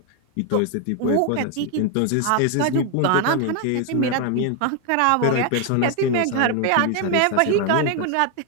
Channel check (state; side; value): different; both; correlation 0.01